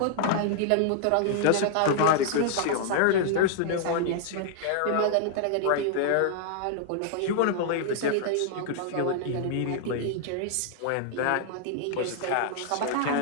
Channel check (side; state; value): both; different; correlation -0.01